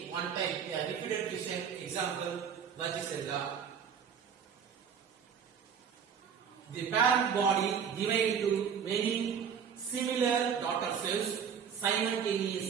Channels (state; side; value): quieter; left; 7.4 dB